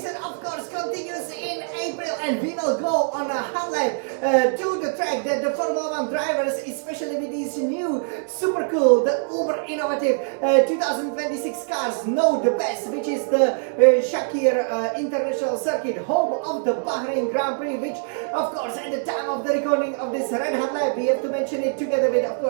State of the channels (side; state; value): left; silent; digital silence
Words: of course, continues in April, and we will go on a highlight to the track that the Formula 1 drivers, especially with these new super cool, the uber innovative 2026 cars, know the best, which is the Sakhir International Circuit, home of the Bahrain Grand Prix, which, of course, at the time of the recording of this red hot lap, we have to mention it together with, of